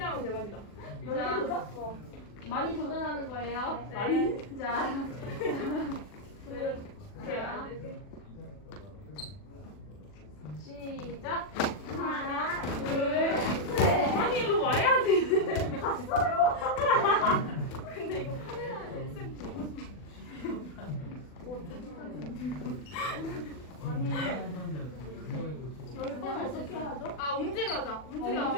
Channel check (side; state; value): right; late; 40 ms